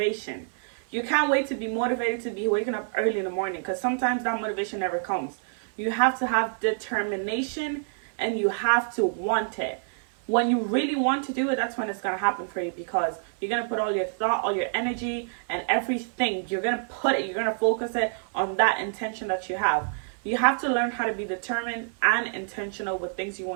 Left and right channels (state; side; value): silent; left; 57 dB below the other